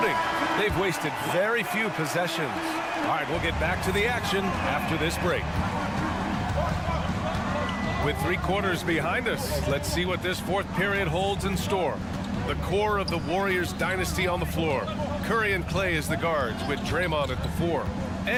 They've wasted very few possessions. All right, we'll get back to the action after this break. With 3 quarters behind us, let's see what this fourth period holds in store. The core of the Warriors dynasty on the floor. Curry and Clay as the guards, with Draymond at the 4.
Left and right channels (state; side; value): identical; both; correlation 1.00